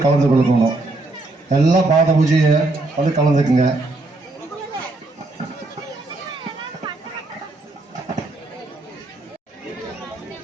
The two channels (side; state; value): left; quieter; 3.0 dB